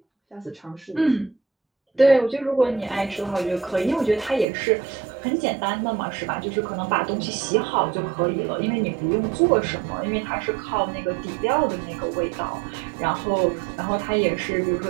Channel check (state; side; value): drops out; left; at 4.5 s